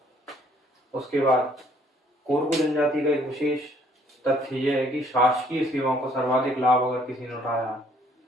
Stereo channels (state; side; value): normal; both; correlation 0.63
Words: उसके बाद कोरकू जनजाति का एक विशेष तथ्य यह है कि शासकीय सेवाओं का सर्वाधिक लाभ अगर किसी ने उठाया